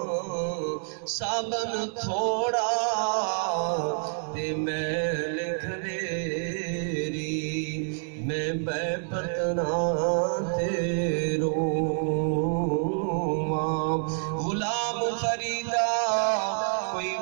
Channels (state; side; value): silent; left; digital silence